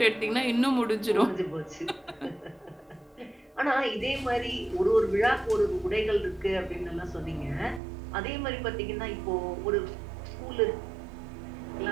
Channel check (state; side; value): drops out; left; at 7.8 s